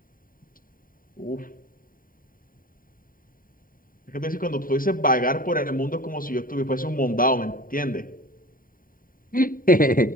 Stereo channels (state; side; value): late; right; 0.41 ms